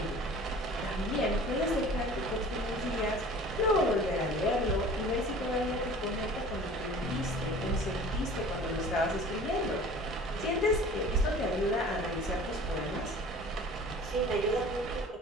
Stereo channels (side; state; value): both; normal; correlation 0.44